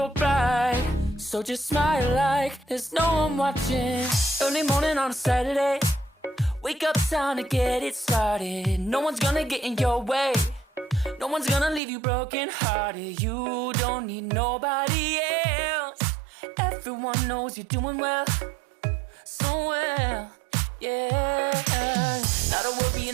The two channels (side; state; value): left; drops out; at 11.8 s